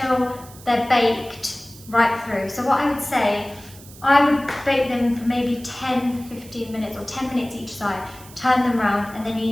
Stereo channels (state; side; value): noise; right; hiss, 20 dB below the sound